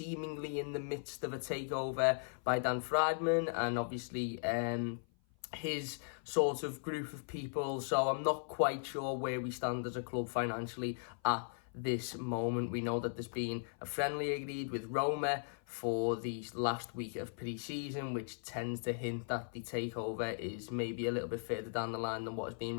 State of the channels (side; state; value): right; silent; 53 dB below the other